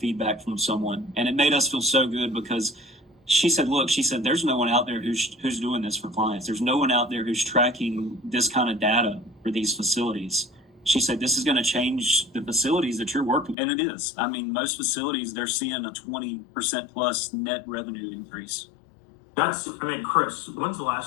from someone. And it made us feel so good because she said, look, there's no one out there who's doing this for clients. There's no one out there who's tracking this kind of data for these facilities. She said, this is going to change the facilities that you're working. And it is. I mean, most facilities, they're seeing a 20% plus net revenue increase. Chris, when's the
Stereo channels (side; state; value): right; drops out; at 13.6 s